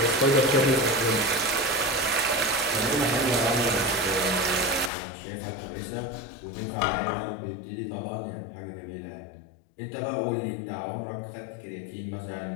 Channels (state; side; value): drops out; right; at 4.9 s